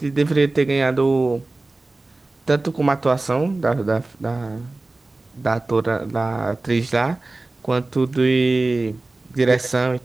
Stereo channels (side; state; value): left; quieter; 3.1 dB